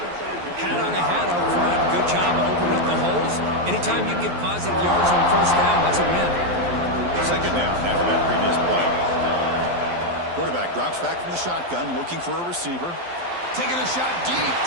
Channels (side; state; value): left; late; 12 ms